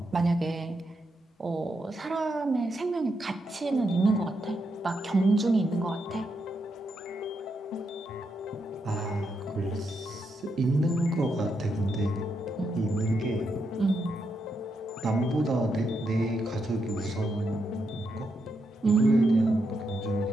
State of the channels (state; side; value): normal; both; correlation 0.82